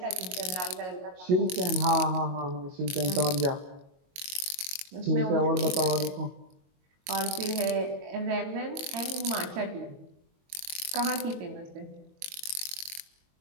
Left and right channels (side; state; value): left; late; 22 ms